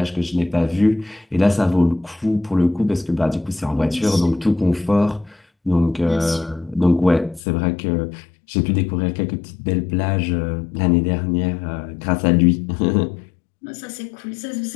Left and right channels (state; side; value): drops out; right; at 7.4 s